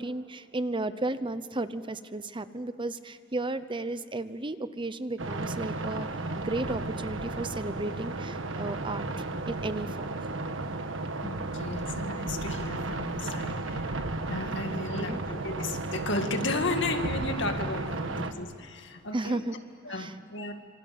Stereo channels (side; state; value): both; normal; correlation 0.37